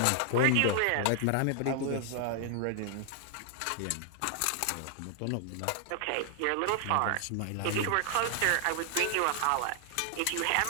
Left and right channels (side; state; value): both; different; correlation 0.00